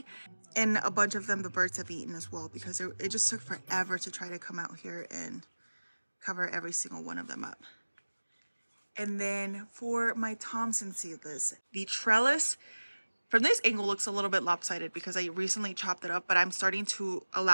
And a bunch of them the birds have eaten as well, because it just took forever to try to come out here and cover every single one of them up. And then for my Thompson seedless, the trellis from this angle looks a little bit lopsided because I recently chopped it up, but I'm starting to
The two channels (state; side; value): inverted; both; correlation -1.00